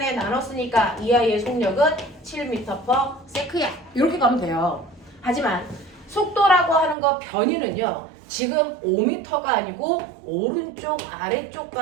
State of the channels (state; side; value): drops out; left; at 7.0 s